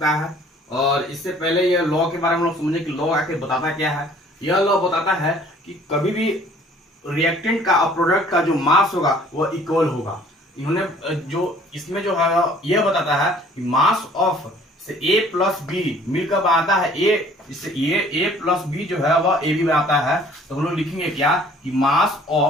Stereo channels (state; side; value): normal; both; correlation 0.54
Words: है। और इससे पहले यह लॉ के बारे में हम लोग समझे कि लॉ आके बताता क्या है। यह लॉ बताता है कि कभी भी रिएक्टेंट का और प्रोडक्ट का जो मास होगा वह इक्वल होगा। इन्होंने जो इसमें जो है यह बताता है कि मास ऑफ से ए प्लस बी मिलकर बनाता है ए, इससे ए प्लस बी जो है वह ए बी बनाता है। तो हम लोग लिखेंगे क्या कि mass